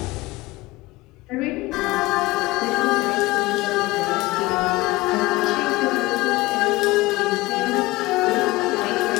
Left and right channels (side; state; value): right; quieter; 20.2 dB